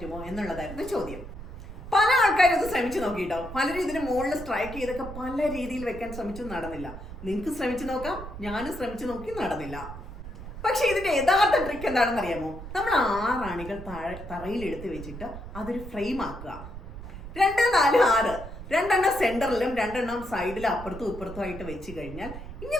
എന്നുള്ളതായിരുന്നു ചോദ്യം. പല ആൾക്കാരും ഇത് ശ്രമിച്ചു നോക്കിയിട്ടോ. പലരും ഇതിന് മുകളിൽ സ്ട്രൈക്ക് ചെയ്തൊക്കെ പല രീതിയിൽ വെക്കാൻ ശ്രമിച്ചു, നടന്നില്ല. നിങ്ങൾക്ക് ശ്രമിച്ചു നോക്കാം, ഞാനും ശ്രമിച്ചു നോക്കി, നടന്നില്ല. പക്ഷെ ഇതിന്റെ യഥാർത്ഥ ട്രിക്ക് എന്താണെന്ന് അറിയാമോ? നമ്മൾ 6 ആണികൾ തറയിൽ എടുത്ത് വെച്ചിട്ട് അതൊരു ഫ്രെയിം ആക്കുക. 2, 4, 6 2 സെന്ററിലും 2 സൈഡിലും അപ്പുറത്തും ഇപ്പുറത്തും ആയിട്ട് വെച്ച് കഴിഞ്ഞാൽ,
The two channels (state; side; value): noise; right; rumble, 11 dB below the sound